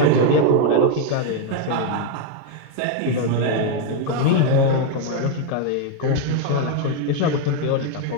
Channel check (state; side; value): different; both; correlation 0.01